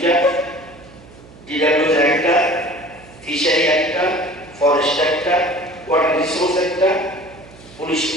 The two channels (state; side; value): noise; right; hum, 22 dB below the sound